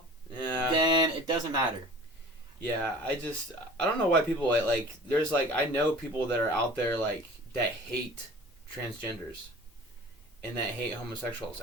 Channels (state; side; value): normal; both; correlation 0.43